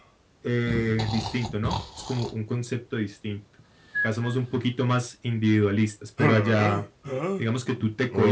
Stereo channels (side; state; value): both; identical; correlation 1.00